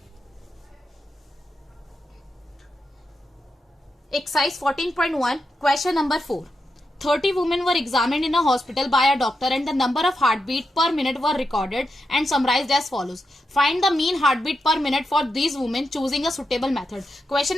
Exercise 14.1 question number 4। 30 women were examined in a hospital by a doctor and the number of heartbeat per minute were recorded and summarized as follows. Find the mean heartbeat per minute for these women choosing a suitable method. Question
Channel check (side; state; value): both; normal; correlation 0.86